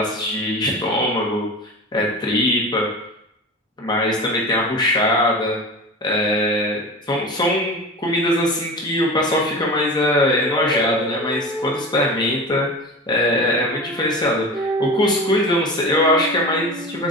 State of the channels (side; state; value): both; normal; correlation 0.31